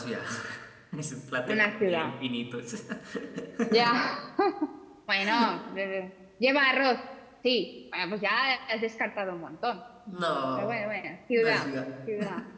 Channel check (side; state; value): both; identical; correlation 1.00